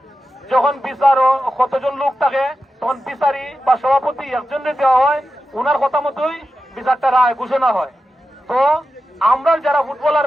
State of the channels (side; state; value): both; normal; correlation 0.92